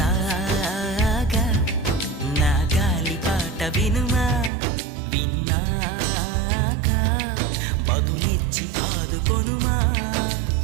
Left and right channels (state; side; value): drops out; left; at 4.5 s